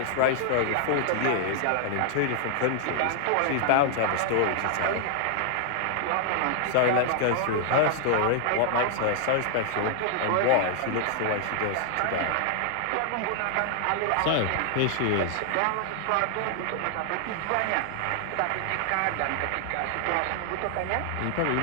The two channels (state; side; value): different; both; correlation 0.00